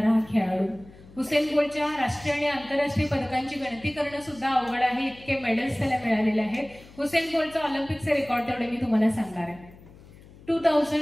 हा खेळाडू. हुसेन बोल्टच्या राष्ट्रीय आणि आंतरराष्ट्रीय पदकांची गणती करणं सुद्धा अवघड आहे, इतके मेडल्स त्याला मिळालेले आहेत. हुसेन बोल्टचा ऑलिम्पिकचे रेकॉर्ड तेवढे मी तुम्हाला सांगणार आहे.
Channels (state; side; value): noise; left; hum, 22 dB below the sound